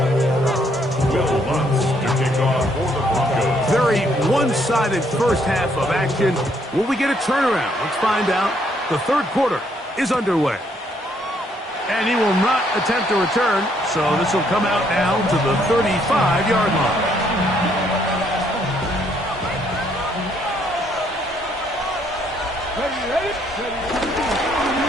me a lot. Will Lutz to kick off for the Broncos. Very one-sided first half of action. Will we get a turnaround? Let's find out. The third quarter is underway. And he will not attempt to return, so this will come out now to the 35-yard line.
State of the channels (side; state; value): both; normal; correlation 0.69